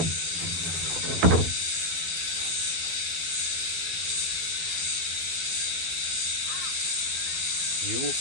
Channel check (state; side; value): late; left; 12 ms